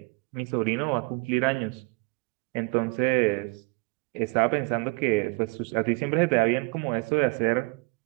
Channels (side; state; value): left; quieter; 29.3 dB